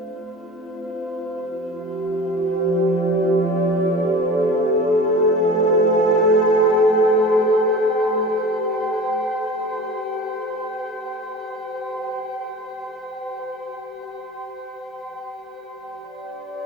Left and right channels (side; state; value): both; normal; correlation 0.37